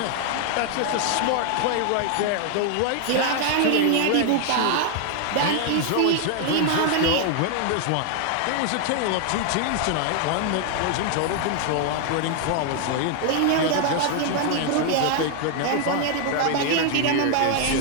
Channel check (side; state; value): both; different; correlation 0.00